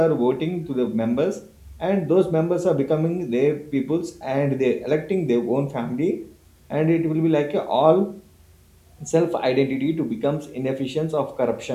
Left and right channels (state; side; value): identical; both; correlation 1.00